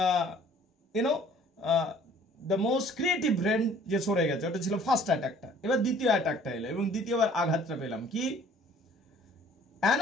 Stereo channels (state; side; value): normal; both; correlation 0.54